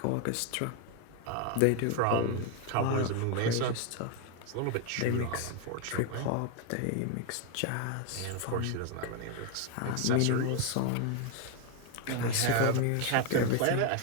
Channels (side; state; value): both; different; correlation 0.00